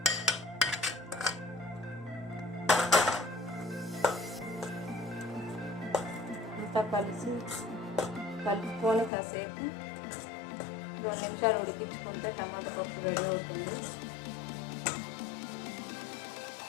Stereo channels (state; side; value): drops out; right; at 9.1 s